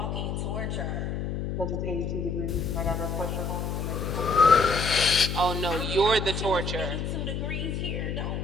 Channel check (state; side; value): noise; left; hum, 3 dB below the sound